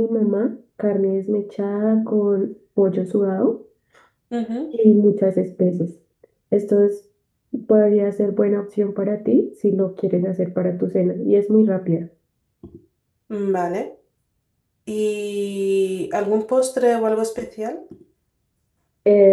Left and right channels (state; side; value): identical; both; correlation 1.00